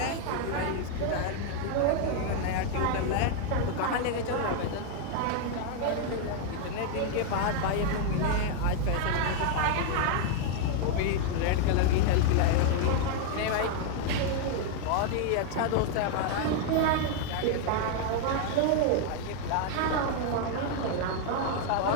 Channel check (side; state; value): both; different; correlation 0.00